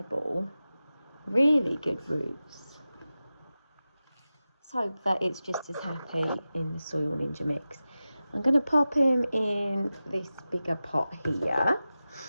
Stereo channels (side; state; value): both; inverted; correlation -0.94